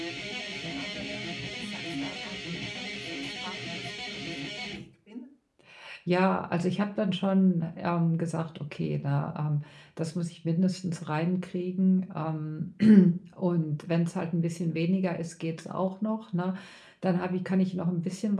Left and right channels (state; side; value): identical; both; correlation 1.00